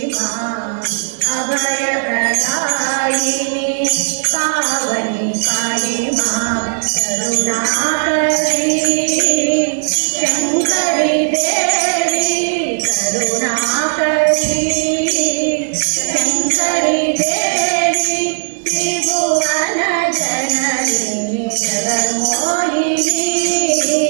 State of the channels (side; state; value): left; silent; 65 dB below the other